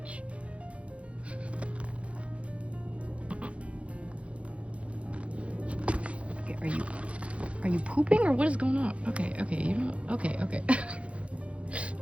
Okay, are you pooping or what is going on? Okay, you don't. Okay.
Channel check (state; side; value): late; left; 0.062 ms